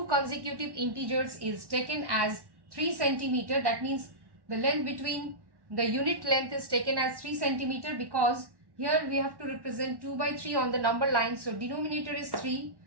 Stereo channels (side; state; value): left; late; 1.1 ms